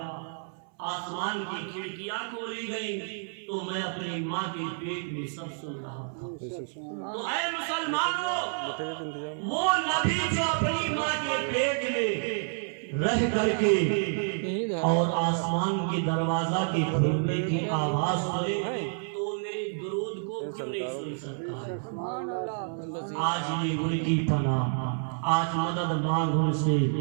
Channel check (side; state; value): left; silent; 58 dB below the other